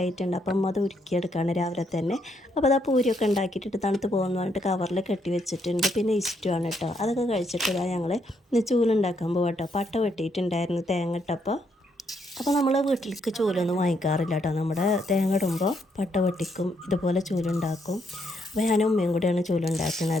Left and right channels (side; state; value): both; normal; correlation 0.74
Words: അപ്പം അത് ഉരുക്കിയെടുക്കുകയാണ് രാവിലെ തന്നെ. അപ്പോൾ അതാ പൂരിയൊക്കെ ഉണ്ടാക്കിയിട്ട് തണുത്ത് പോകുമെന്ന് പറഞ്ഞിട്ട് കവറിൽ കെട്ടി വെച്ചിട്ടുണ്ട്. പിന്നെ ഇഷ്ടമാണ് കേട്ടോ. അതൊക്കെ കഴിച്ചിട്ട് ഞങ്ങൾ ഇന്ന് ചൂലുണ്ടാക്കാൻ പോകാം കേട്ടോ. പട്ട വെട്ടിയിട്ടുണ്ടായിരുന്നു തേങ്ങ ഇട്ടപ്പോൾ. അപ്പോൾ നമ്മൾ വീട്ടിലേക്ക് ചൂലൊന്നും വാങ്ങിക്കാറില്ല കേട്ടോ. നമ്മുടെ തേങ്ങ ഇടുമ്പോൾ പട്ട വെട്ടിക്കും, ഇതുപോലെ ചൂലുണ്ടാക്കും. അപ്പോൾ ഞാനും ഉമ്മയും കൂടെയാണ്